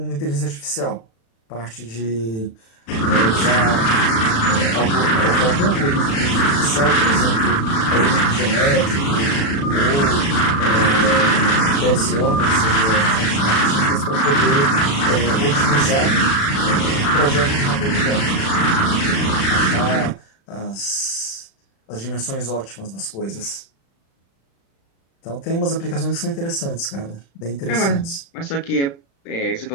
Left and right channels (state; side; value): late; right; 36 ms